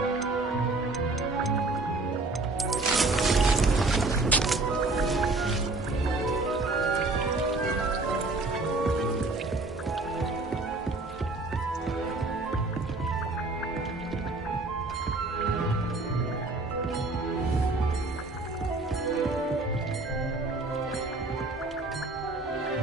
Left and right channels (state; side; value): quieter; left; 3.2 dB